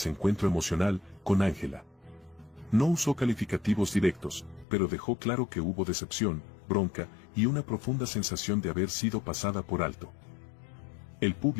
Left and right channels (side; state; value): right; drops out; at 4.7 s